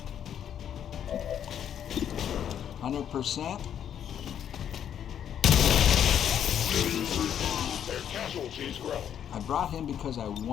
%. Their casualties grow. I brought him because I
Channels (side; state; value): right; quieter; 9.4 dB